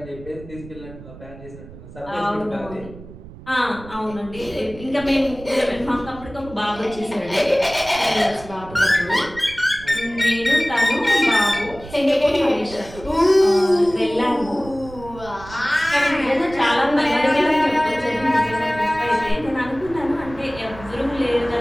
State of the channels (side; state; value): right; noise; rumble, 17 dB below the sound